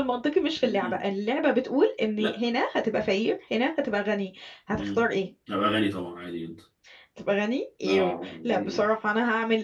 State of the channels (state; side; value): identical; both; correlation 1.00